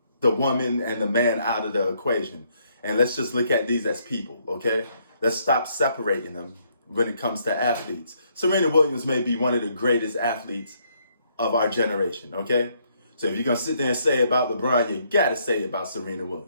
the woman and the man out of the equation, and let's just look at these as people, okay? Let's stop separating them when it comes to athletes. Serena Williams may be one of the greatest athletes of our generation, okay? So if you're going to sit there and say about LeBron, you got to say about Serena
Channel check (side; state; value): both; inverted; correlation -0.71